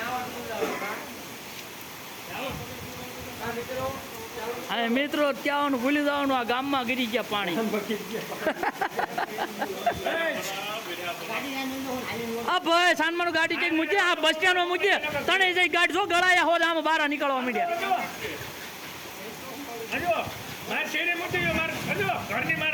અને મિત્રો ત્યાં ભૂલી જવાનું આ ગામમાં ગીરી ગયા પાણી આ ભાઈ સાનમાનું ગાડી કઈક મૂકે આ બસ સ્ટેન્ડમાં મૂકે તણે જઈ ગાડી જો ગળાયા હોત આમાં બહાર નીકળવા માંડ્યા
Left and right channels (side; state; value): both; identical; correlation 1.00